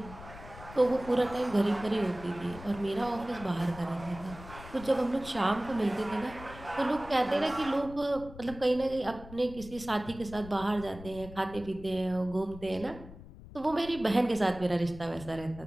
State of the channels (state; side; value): noise; left; rumble, 16 dB below the sound